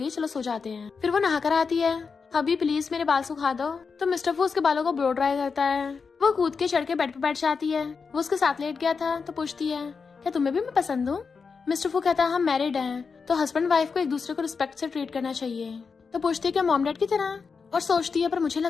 चलो सो जाते हैं। फिर वो नहा कर आती है हबी प्लीज मेरे बाल सुखा दो। तो मिस्टर फू उसके बालों को ब्लो ड्राई करता है। वो कूद के चढ़ के बेड पे बैठ जाती है। वो उसके साथ लेट गया था। तो पूछती है क्या तुम्हें भी मैं पसंद हूँ। मिस्टर फू कहता है हम मैरिड हैं, तो हस्बैंड वाइफ को एक दूसरे को रिस्पेक्ट से ट्रीट करना चाहिए। तो पूछती है क्या मॉम डैड की तरह, और सोचती है पर मुझे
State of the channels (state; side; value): quieter; right; 5.2 dB